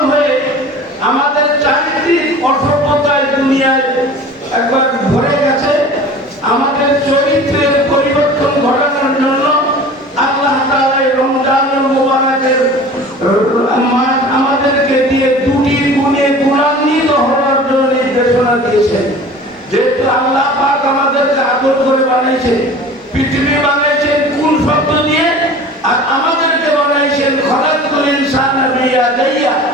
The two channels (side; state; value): both; normal; correlation 0.41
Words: হয়ে আমাদের চারিত্রিক অসভ্যতায় দুনিয়ায় একবার ভরে গেছে। আমাদের চরিত্রের পরিবর্তন ঘটানোর জন্য আল্লাহ তাআলা এই রমজানুল মুবারকের মাস আমাদেরকে দিয়ে দুটি গুণে গুণান্বিত হওয়ার জন্য নির্দেশনা দিয়েছেন। যেহেতু আল্লাহ পাক আমাদেরকে আদর করে বানাইছেন, পৃথিবী বানাইছেন কুল শব্দ দিয়ে, আর আমাদেরকে বানাইছেন খলাকুল ইনসানা বিয়াদাইয়া,